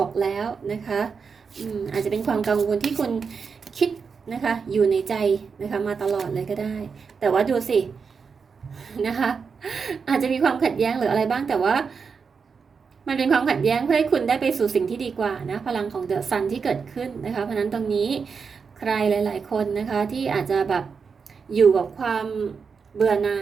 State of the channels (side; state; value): left; quieter; 5.6 dB